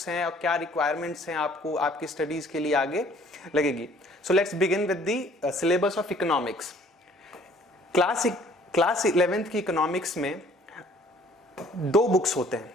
हैं और क्या रिक्वायरमेंट्स हैं आपको आपकी स्टडीज़ के लिए आगे लगेगी। So let's begin with the syllabus of economics. Class 11th की इकोनॉमिक्स में दो बुक्स होते हैं।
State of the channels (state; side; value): normal; both; correlation 0.56